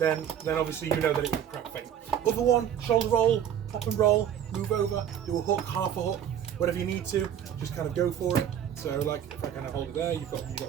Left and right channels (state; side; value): quieter; left; 9.6 dB